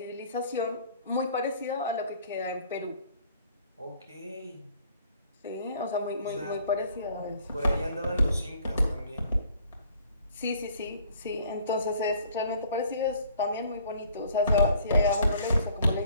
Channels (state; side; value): inverted; both; correlation -0.57